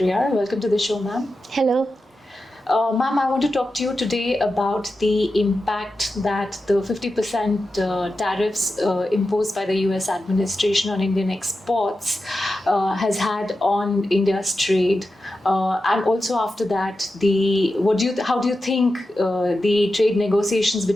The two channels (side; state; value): both; normal; correlation 0.91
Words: Welcome to the show, ma'am. Hello. Ma'am, I want to talk to you today about the impact that the 50% tariffs imposed by the US administration on Indian exports has had on India's trade. And also after that, how do you think the trade negotiations